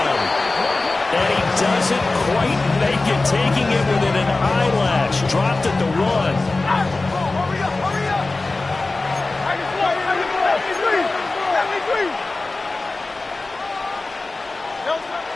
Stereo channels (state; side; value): quieter; right; 3.3 dB